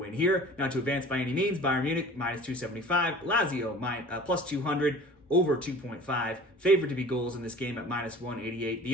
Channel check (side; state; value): both; normal; correlation 0.43